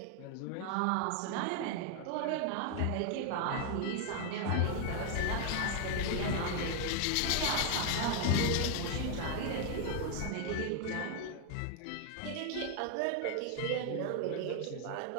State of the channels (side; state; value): both; different; correlation 0.00